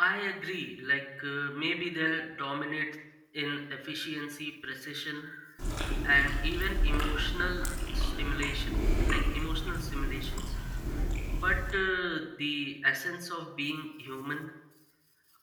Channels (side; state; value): both; identical; correlation 1.00